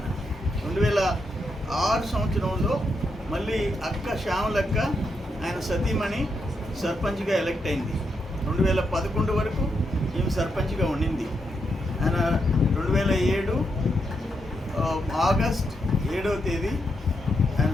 2006 సంవత్సరంలో మళ్ళీ అక్క శ్యామలక్క ఆయన సతీమణి సర్పంచ్గా ఎలక్ట్ అయింది. 2011 వరకు ఈమె సర్పంచ్గా ఉండింది. ఆయన 2007 ఆగస్ట్ 7వ తేదీ ఆయన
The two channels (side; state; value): both; normal; correlation 0.82